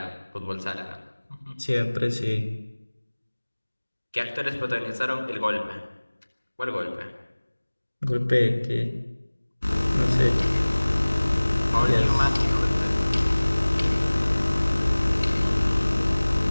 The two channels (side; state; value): both; inverted; correlation -1.00